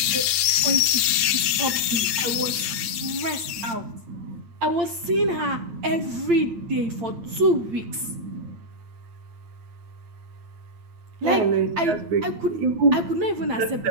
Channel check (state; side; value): late; left; 8.8 ms